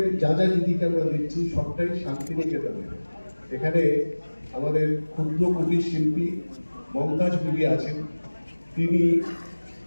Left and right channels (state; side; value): inverted; both; correlation -1.00